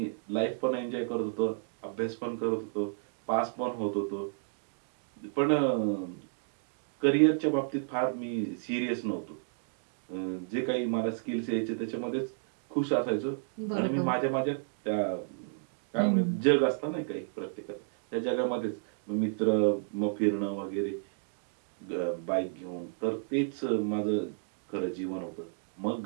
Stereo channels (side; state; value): left; silent; digital silence